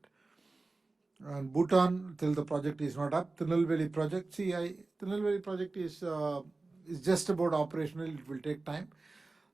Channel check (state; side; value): quieter; left; 3.4 dB